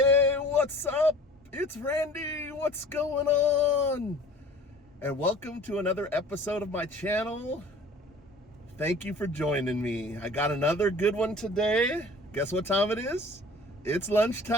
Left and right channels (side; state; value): both; normal; correlation 0.46